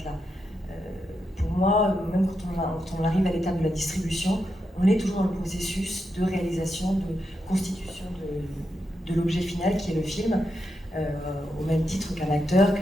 là. Pour moi, même quand on arrive à l'étape de la distribution, on est toujours dans le processus de réalisation, de constitution de l'objet final qui est le film, au même titre qu'un acteur,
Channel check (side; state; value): both; normal; correlation 0.85